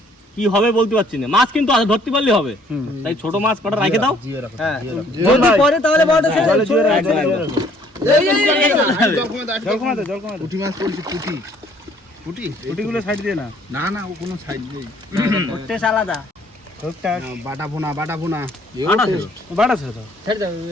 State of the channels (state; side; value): normal; both; correlation 0.61